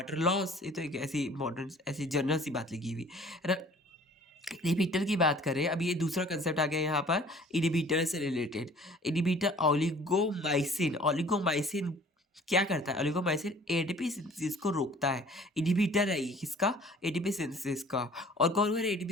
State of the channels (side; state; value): both; normal; correlation 0.51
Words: लॉस, ये तो एक ऐसी इम्पोर्टेंट ऐसी जनरल सी बात लिखी हुई है ना। इनहिबिटर की बात करें, अब ये दूसरा कंसेप्ट आ गया यहाँ पर इनहिबिटर से रिलेटेड। इनहिबिटर ओलिगोमाइसिन, ओलिगोमाइसिन क्या करता है? ओलिगोमाइसिन एटीपी सिंथेसिस को रोकता है। इनहिबिटर है ये किसका? एटीपी सिंथेसिस का। और कौन कौन है